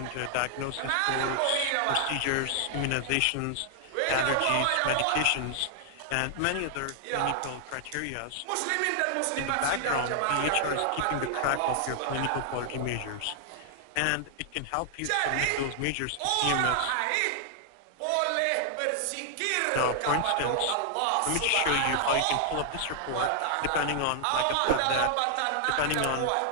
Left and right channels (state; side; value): different; both; correlation 0.00